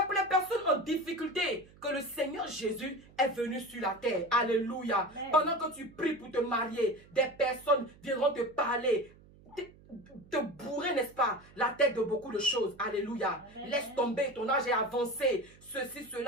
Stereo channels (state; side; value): noise; right; hum, 24 dB below the sound